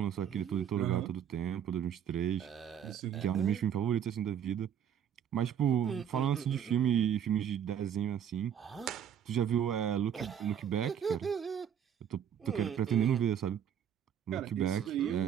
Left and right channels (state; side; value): quieter; left; 9.0 dB